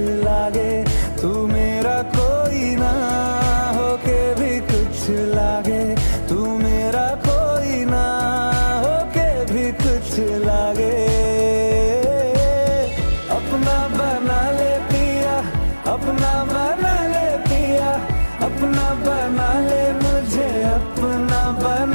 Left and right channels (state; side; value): inverted; both; correlation -1.00